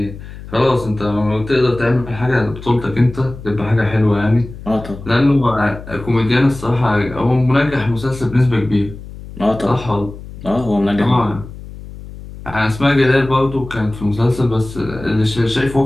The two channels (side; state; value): left; noise; hum, 14 dB below the sound